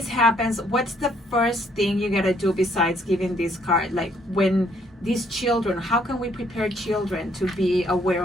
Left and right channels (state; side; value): normal; both; correlation 0.67